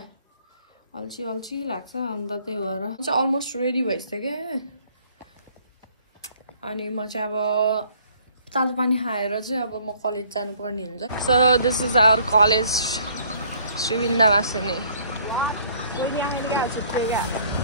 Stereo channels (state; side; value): inverted; both; correlation -0.59